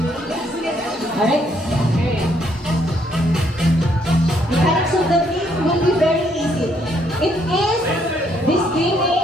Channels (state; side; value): normal; both; correlation 0.70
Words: Alright. Mechanics of the game will be very easy. This game